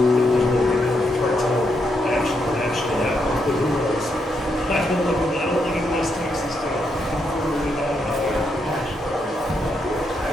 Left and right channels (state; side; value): normal; both; correlation 0.79